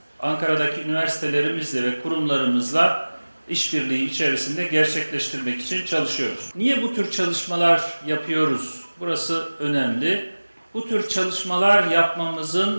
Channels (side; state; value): both; inverted; correlation -1.00